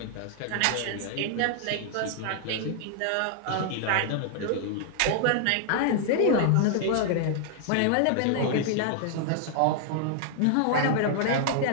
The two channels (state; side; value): different; both; correlation -0.01